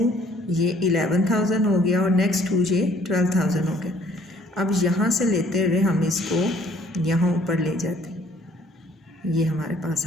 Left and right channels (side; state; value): both; normal; correlation 0.59